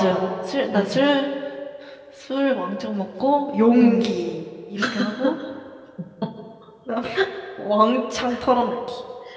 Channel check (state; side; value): identical; both; correlation 1.00